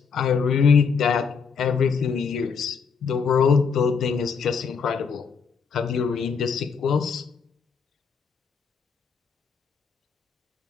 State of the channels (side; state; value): right; quieter; 5.8 dB